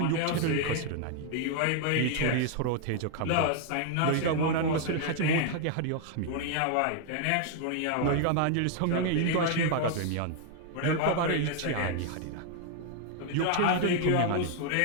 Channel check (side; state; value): both; different; correlation 0.00